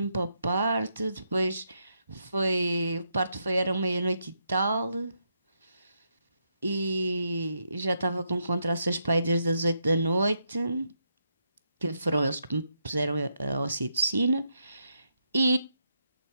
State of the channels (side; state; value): both; inverted; correlation -0.80